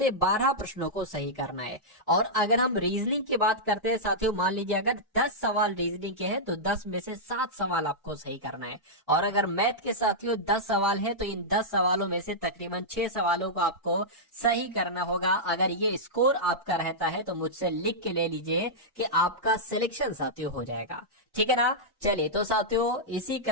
12 प्रश्नों को सही करना है। और अगर हम रीजनिंग की बात करते हैं साथियों, मान लीजिए अगर 10 सवाल रीजनिंग के हैं तो 10 में से 7 सवाल आपको सही करना है। और अगर मैथ के साथियों 10 सवाल है तो इन 10 सवालों में से तकरीबन 6 सवालों को आपको सही करना होगा। अगर ये स्कोर आपका रहता है तो मुझसे लिख के ले लीजिए कि आपका सिलेक्शन साथियों हो जाएगा। ठीक है ना। चलिए तो साथियों इसी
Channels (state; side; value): normal; both; correlation -0.10